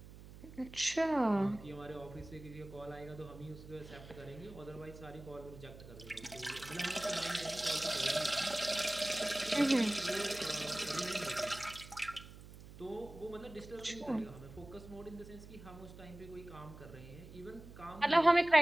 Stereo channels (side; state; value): right; noise; hum, 16 dB below the sound